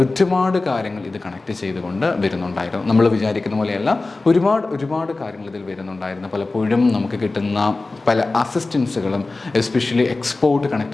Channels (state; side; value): quieter; right; 3.4 dB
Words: ഒരുപാട് കാര്യങ്ങൾ ഇത് കണക്ട് ചെയ്തുകൊണ്ട് വരുന്നുണ്ടായിരുന്നു. നമ്മൾ വിചാരിക്കുന്ന പോലെയല്ല, ഒരുപാട് കാര്യങ്ങൾ ഇതിൽ വരുന്നുണ്ടായിരുന്നു. പലപ്പോഴും നമുക്ക് കിട്ടുന്ന പല അസിസ്റ്റൻസുകളും എസ്പെഷ്യലി എക്സ്പോർട്ട്